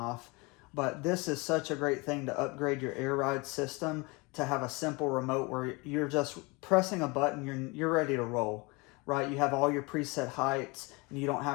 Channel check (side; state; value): right; quieter; 26.7 dB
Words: But this is such a great thing to upgrade your air ride system, to have a simple remote where you're just pressing a button, you're ready to roll, right? You have all your preset heights and you don't